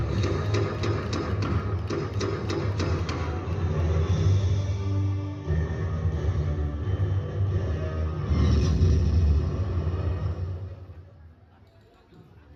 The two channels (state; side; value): identical; both; correlation 1.00